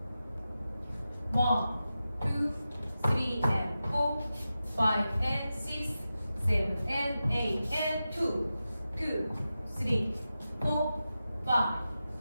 1, 2, 3 and 4, 5 and 6, 7 and 8 and 2, 2, 3, 4, 5,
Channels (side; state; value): both; inverted; correlation -0.92